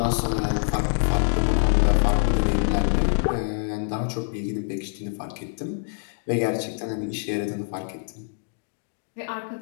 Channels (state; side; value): silent; right; digital silence